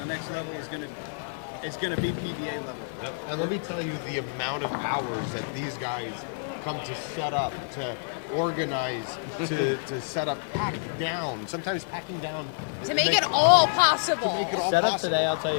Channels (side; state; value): right; silent; 59 dB below the other